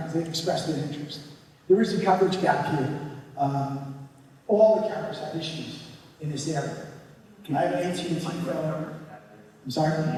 they've expressed their interest. There is a coverage gap here. All the carriers have issues in this area. I have an AT&T phone. I'm sorry?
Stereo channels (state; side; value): identical; both; correlation 1.00